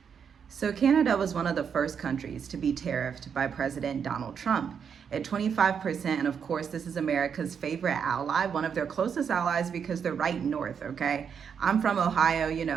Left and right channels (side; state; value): left; quieter; 7.1 dB